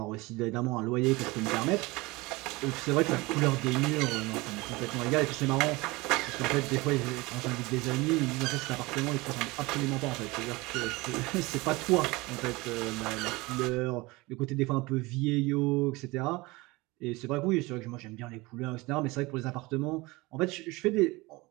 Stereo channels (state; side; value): quieter; left; 22.7 dB